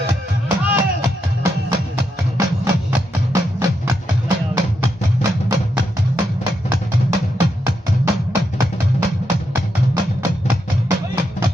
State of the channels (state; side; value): normal; both; correlation 0.82